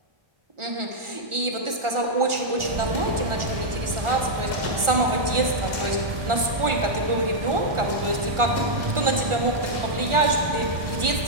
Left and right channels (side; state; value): left; late; 1.4 ms